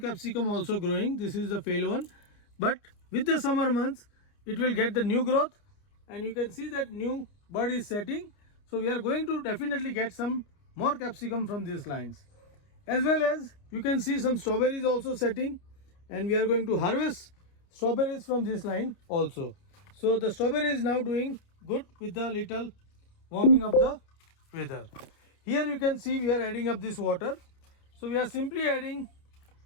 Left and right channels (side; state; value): right; late; 29 ms